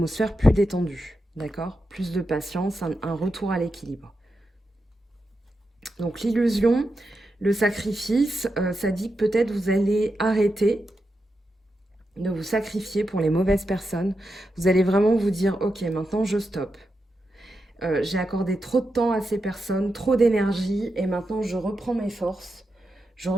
plus détendue, d'accord? Plus de patience, un retour à l'équilibre. Donc l'illusion, le sacrifice, ça dit que peut-être vous allez arrêter de vous sacrifier pour les mauvaises personnes. Vous allez vraiment vous dire, ok, maintenant je stoppe. J'ai accordé trop de temps à ces personnes, trop d'énergie, et maintenant je reprends mes forces, je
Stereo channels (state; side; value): normal; both; correlation 0.87